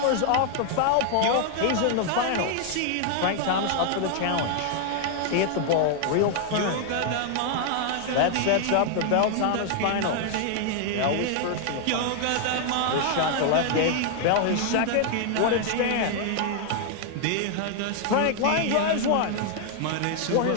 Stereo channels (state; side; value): different; both; correlation 0.00